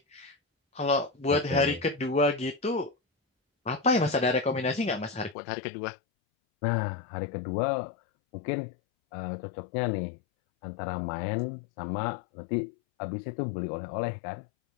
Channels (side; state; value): right; drops out; at 5.4 s